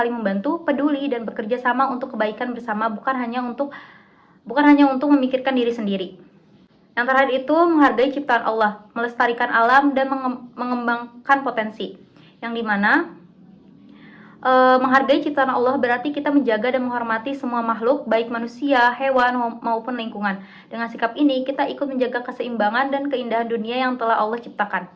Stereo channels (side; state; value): both; identical; correlation 1.00